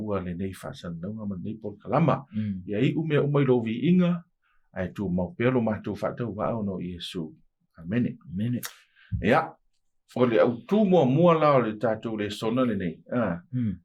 le nei whasandaunga ma nei porkalama. Ia i ume umai lo vi inga, ai tu mau pelo mātou whatau wao no Iesu. Amene. Ia, o le autu mua la o le tātou le sona le nei.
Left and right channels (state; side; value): identical; both; correlation 1.00